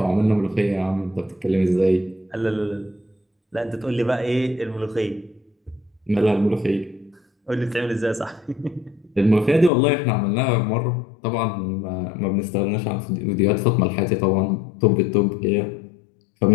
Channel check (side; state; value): right; drops out; at 9.7 s